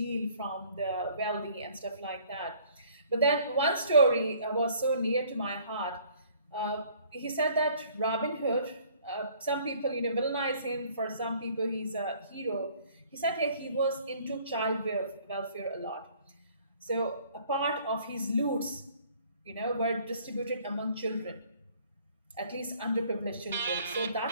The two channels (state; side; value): inverted; both; correlation -0.57